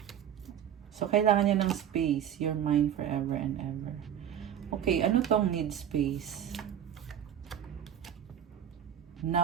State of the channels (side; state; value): left; quieter; 9.8 dB